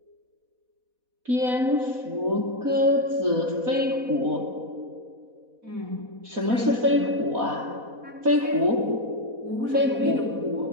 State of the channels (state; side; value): late; left; 4.1 ms